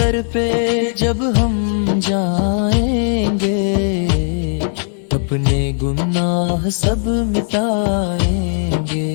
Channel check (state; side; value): silent; right; digital silence